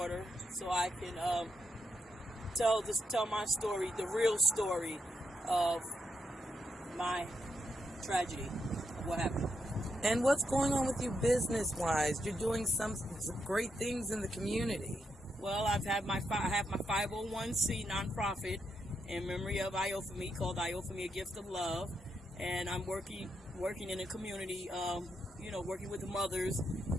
so I can tell my story, the real story of my tragedy of what happened. And what's going on with you business-wise? You're doing some great things in the community. Well, I have my 501c nonprofit in memory of Iophemy called Iophemy: A Gift of Love, and I'm working in the community, working with the mothers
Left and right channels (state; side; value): normal; both; correlation 0.81